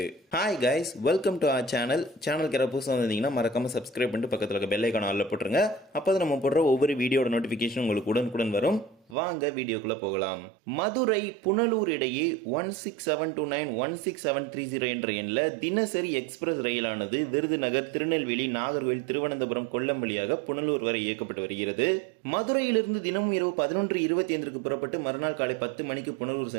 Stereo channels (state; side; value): drops out; left; at 9.2 s